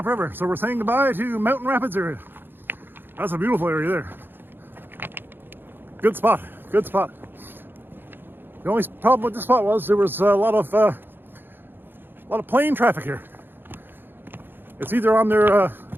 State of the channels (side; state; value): left; late; 0.099 ms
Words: so we're saying goodbye to Mountain Rapids area. That's a beautiful area there. Good spot. Good spot. The only problem with this spot was there was a lot of plane traffic here. It's either on their